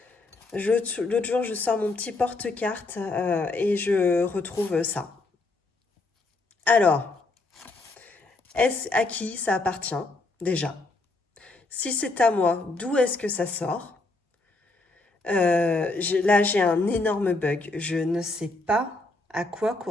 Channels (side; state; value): right; quieter; 3.2 dB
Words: L'autre jour, je sors mon petit porte-carte et je retrouve ça. Alors, est-ce à qui ça appartient, déjà? Si c'est à moi, d'où est-ce que ça sort? Là, j'ai un énorme bug. Je ne sais pas à quoi